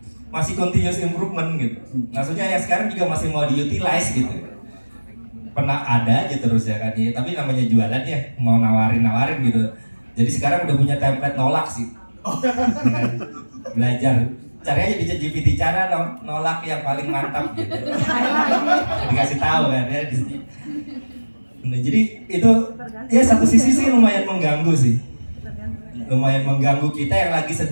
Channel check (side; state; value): both; inverted; correlation -1.00